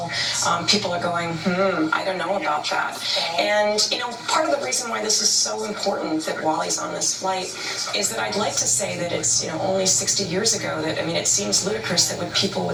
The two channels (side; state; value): both; identical; correlation 1.00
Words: people are going, I don't know about that. And, part of the reason why this is so important that Wally's on this flight is that I'd like to say that it's, only 60 years ago that, it seems ludicrous that people